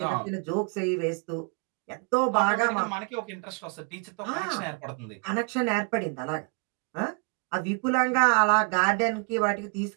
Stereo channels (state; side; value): quieter; left; 34.5 dB